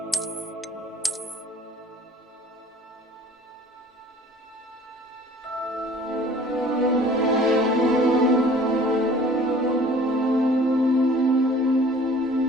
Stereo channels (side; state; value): both; normal; correlation 0.50